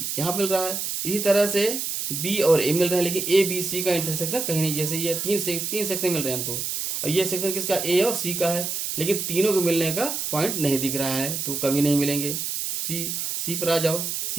यहाँ मिल रहा है, इसी तरह से बी और ए मिल रहा है, लेकिन ए बी सी का इंटरसेक्शन कहीं नहीं। जैसे ये तीन सेक्शन मिल रहे हैं हमको, और ये सेक्शन किसका, ए और सी का है, लेकिन तीनों को मिलने का पॉइंट नहीं दिख रहा है, तो कभी नहीं मिलेंगे। सी पर आ जाओ।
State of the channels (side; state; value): right; noise; hiss, 3 dB below the sound